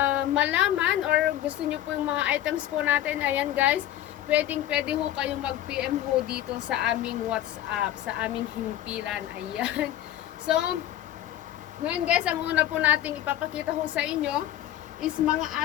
malaman or gusto nyo po yung mga items po natin. Ayan guys. Pwede ho kayong mag-PM ho dito sa aming WhatsApp. Sa aming himpilan. Ayan. So, ngayon guys, ang una po nating ipapakita ho sa inyo is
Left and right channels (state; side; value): quieter; right; 12.8 dB